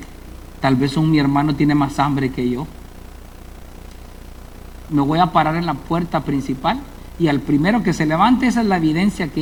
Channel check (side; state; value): both; identical; correlation 1.00